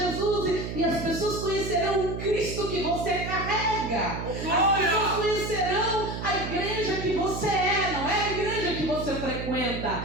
e as pessoas conhecerão o Cristo que você carrega. As pessoas conhecerão a igreja que você é, não é a igreja que você frequenta.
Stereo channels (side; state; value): right; noise; hum, 6 dB below the sound